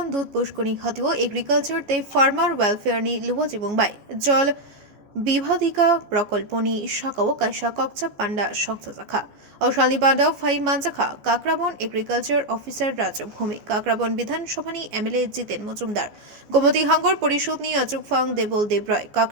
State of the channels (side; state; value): left; late; 14 ms